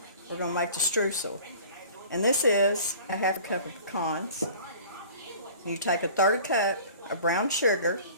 We're going to make the streusel. And this is a half a cup of pecans. You take a third cup of brown sugar,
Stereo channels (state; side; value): inverted; both; correlation -0.45